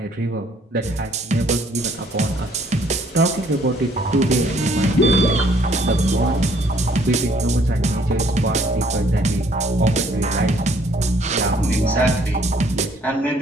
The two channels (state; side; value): normal; both; correlation 0.62